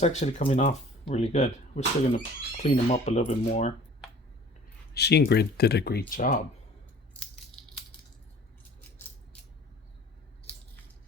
actually coming off really good. We're still going to clean them up a little bit more. She and Grid did a great job.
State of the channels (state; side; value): normal; both; correlation 0.48